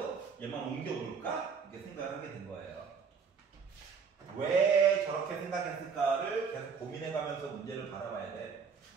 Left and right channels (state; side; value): quieter; left; 5.9 dB